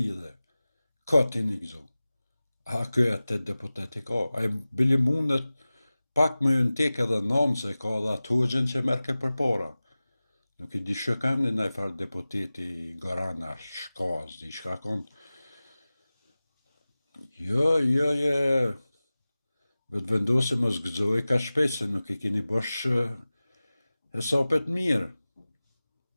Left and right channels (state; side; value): inverted; both; correlation -0.97